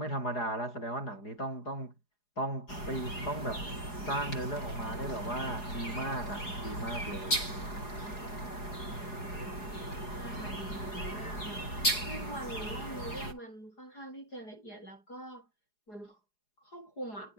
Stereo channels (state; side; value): late; right; 4.8 ms